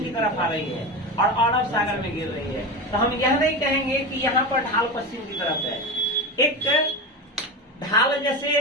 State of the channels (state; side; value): normal; both; correlation 0.22